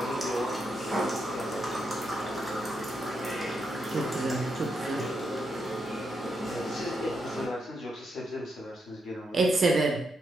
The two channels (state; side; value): normal; both; correlation 0.82